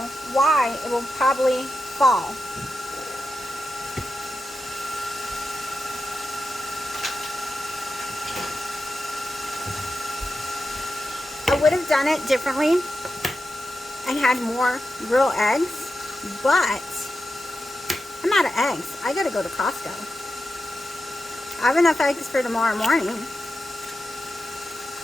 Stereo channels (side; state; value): both; normal; correlation 0.89